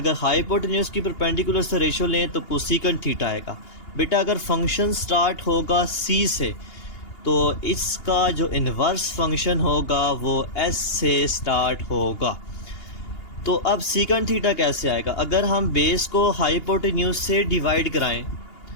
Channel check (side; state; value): right; late; 2.8 ms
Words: हाइपोटेन्यूज की परपेंडिकुलर से रेशो लें तो कोसेकेंट थीटा आएगा। बेटा अगर फंक्शन स्टार्ट होगा सी से तो इसका जो इन्वर्स फंक्शन होगा वो एस से स्टार्ट होगा। तो अब सीकेंट थीटा कैसे आएगा? अगर हम बेस को हाइपोटेन्यूज से डिवाइड कराएं